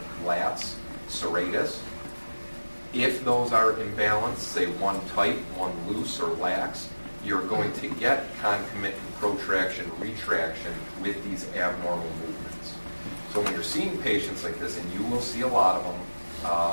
lats, serratus. If those are imbalanced, say one tight, one loose or lax, you're going to get concomitant protraction, retraction with these abnormal movements. So when you're seeing patients like this, and you will see a lot of them,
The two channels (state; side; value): inverted; both; correlation -1.00